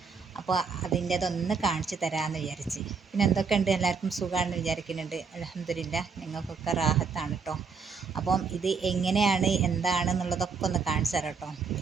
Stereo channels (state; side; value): quieter; left; 5.3 dB